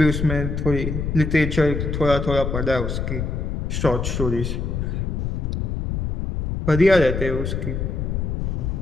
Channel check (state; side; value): noise; left; rumble, 2 dB below the sound